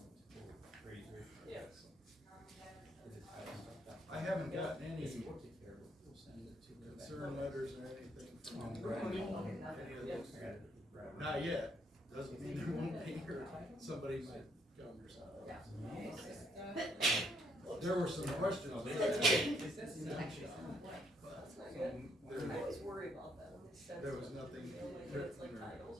Yeah. I haven't gotten any concern letters or anything from any of those. Not yet, doesn't mean there won't be, or somebody might come or something. There were some questions. I always worry about that when they send. There was nothing It's like written titles.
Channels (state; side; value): normal; both; correlation 0.71